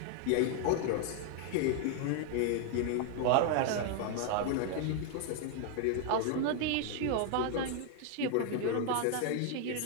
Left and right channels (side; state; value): both; different; correlation 0.00